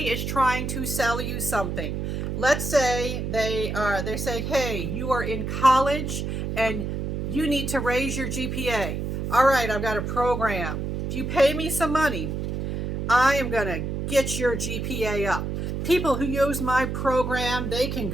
is trying to sell you something, let's say they're saying, hey, you are in college and you need to raise your GPA. All right, I've got a program. If you pay me some money, I am going to get your GPA up. People who use my program, they can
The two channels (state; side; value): noise; right; hum, 3 dB below the sound